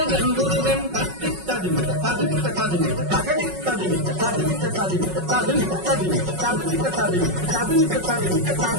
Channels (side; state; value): left; late; 5.4 ms